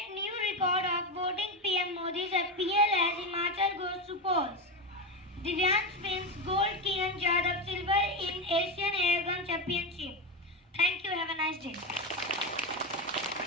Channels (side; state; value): both; normal; correlation 0.15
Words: new record of voting PM Modi's appeal as Himachal goes to polls. Divyansh wins gold, Kiran Jadhav silver in Asian Airgun Championship. Thank you. Have a nice day.